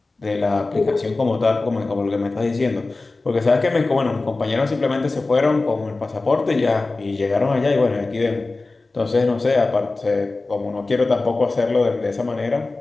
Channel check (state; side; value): quieter; right; 3.4 dB